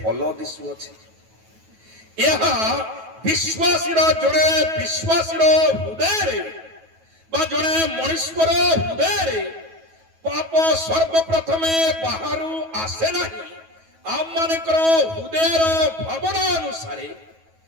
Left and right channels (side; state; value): left; late; 9.2 ms